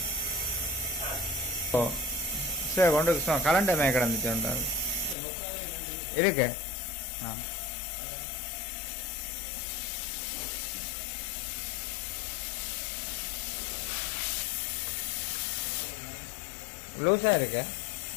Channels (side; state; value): right; drops out; at 5.2 s